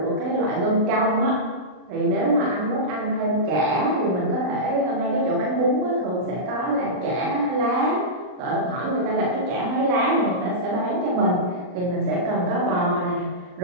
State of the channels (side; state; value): left; late; 39 ms